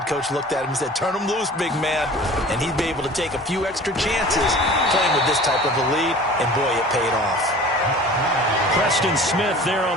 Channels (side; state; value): both; normal; correlation 0.43